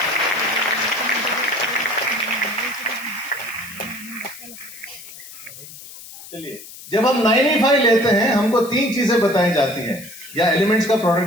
चलिए, जब हम 9E5 लेते हैं हमको 3 चीजें बताई जाती हैं, या एलिमेंट्स का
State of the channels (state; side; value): noise; left; hiss, 16 dB below the sound